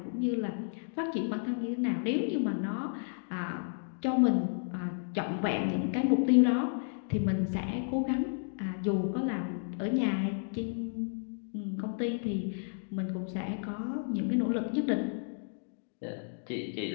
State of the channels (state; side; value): silent; right; digital silence